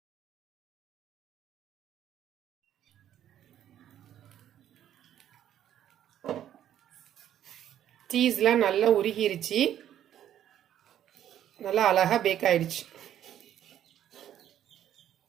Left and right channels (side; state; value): left; quieter; 10.9 dB